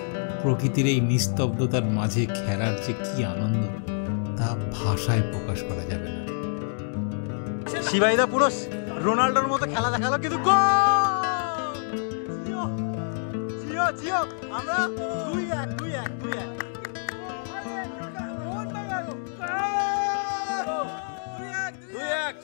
প্রকৃতির এই নিস্তব্ধতার মাঝে খেলার যে কি আনন্দ, তা ভাষায় প্রকাশ করা যাবে না। শিবাইদা পুরো রোনাল্ডোর মতো খেলা দেখালো, কিন্তু আমরা 2-1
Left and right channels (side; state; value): right; silent; digital silence